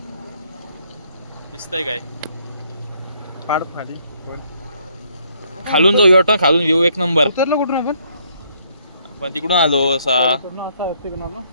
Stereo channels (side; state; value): both; inverted; correlation -0.68